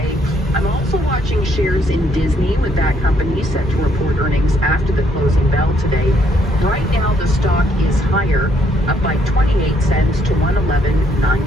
I'm also watching shares in Disney, with that company set to report earnings after the closing bell today. Right now, the stock is higher, up by 28 cents to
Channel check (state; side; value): normal; both; correlation 0.70